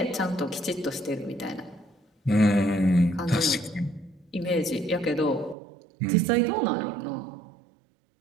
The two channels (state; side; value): drops out; left; at 5.6 s